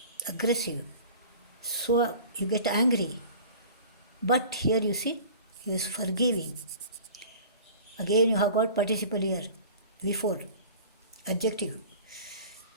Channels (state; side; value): inverted; both; correlation -0.41